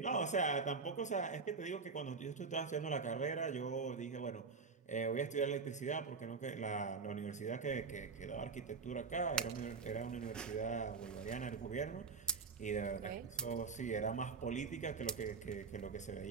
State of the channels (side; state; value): left; quieter; 4.9 dB